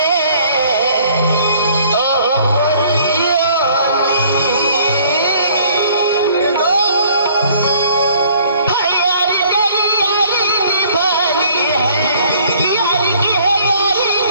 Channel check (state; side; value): inverted; both; correlation -0.58